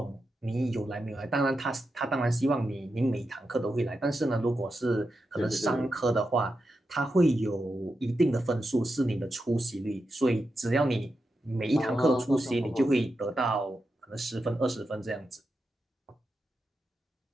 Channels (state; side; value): normal; both; correlation 0.88